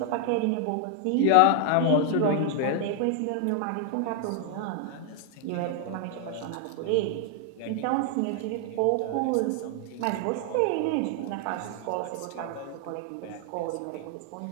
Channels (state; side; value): different; both; correlation 0.00